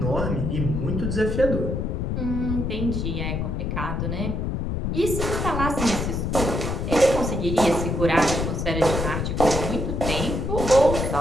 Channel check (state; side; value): noise; left; rumble, 1 dB below the sound